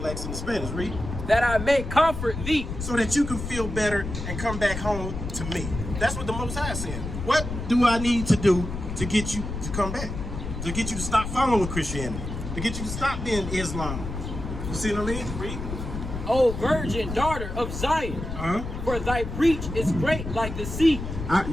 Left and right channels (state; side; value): noise; left; rumble, 6 dB below the sound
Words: and the Spanish. Read. That I may comfort thee. So that you can feel better and come back home to me. That's what the Most High is saying. What do I need to do to get you to come back? To get you to stop following Christianity? To get you to stop being Islam? You see what I mean? Read. O virgin daughter of Zion, for thy breach is great like the sea.